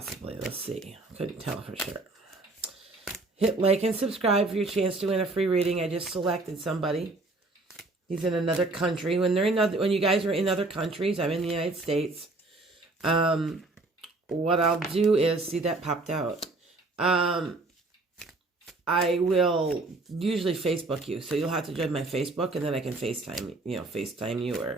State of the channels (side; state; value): left; quieter; 3.2 dB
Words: Let's see. Couldn't tell for sure. Hit like and subscribe for your chance to win a free reading. I just selected somebody. He's in another country. When you guys are in other countries, I'm in the United States. What I'll do is, see, that popped out. I will usually Facebook you, so you'll have to join my Facebook, and then I can FaceTime you.